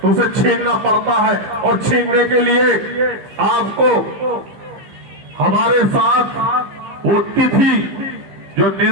उसे छीनना पड़ता है, और छीनने के लिए आपको हमारे साथ वो तिथि जो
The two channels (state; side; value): late; left; 15 ms